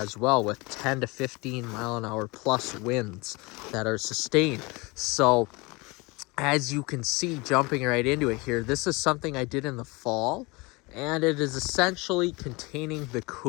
well, with 10 to 15 mile an hour plus winds that are sustained. So as you can see, jumping right into it here, this is something I did in the fall, and it is essentially containing the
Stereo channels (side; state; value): right; quieter; 25.6 dB